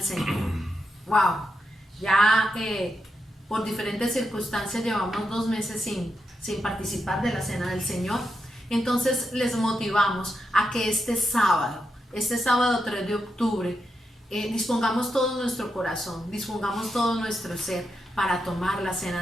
Señor. Wow, ya por diferentes circunstancias llevamos 2 meses sin participar de la cena del Señor. Entonces les motivamos a que este sábado 3 de octubre, dispongamos todo nuestro corazón, dispongamos todo nuestro ser para tomar la cena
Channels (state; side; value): normal; both; correlation 0.86